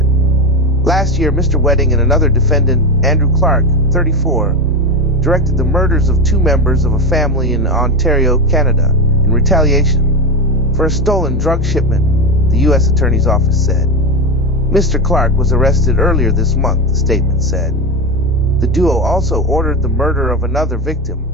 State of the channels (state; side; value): normal; both; correlation 0.16